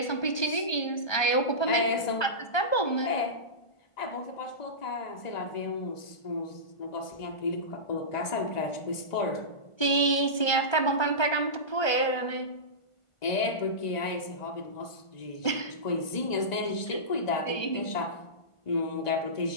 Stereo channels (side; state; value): right; late; 1.3 ms